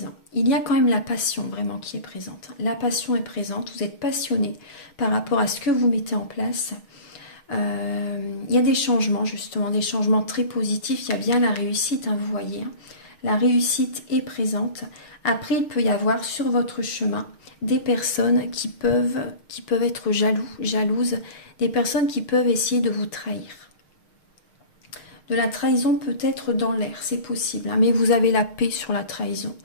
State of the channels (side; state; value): right; late; 6.5 ms